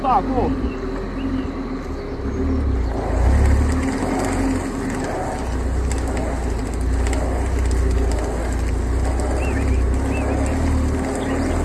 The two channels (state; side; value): identical; both; correlation 1.00